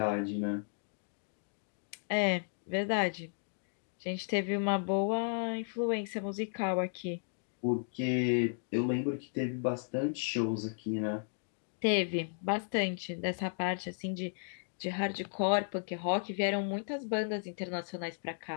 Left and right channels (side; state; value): right; silent; digital silence